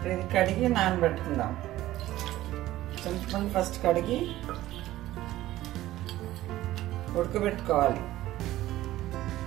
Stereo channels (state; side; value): quieter; left; 15.3 dB